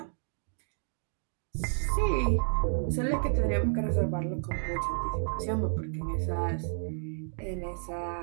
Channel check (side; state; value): left; silent; digital silence